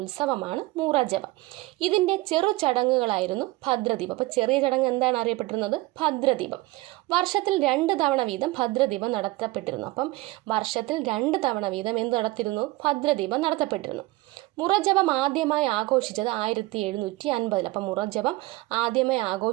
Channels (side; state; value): left; quieter; 20.4 dB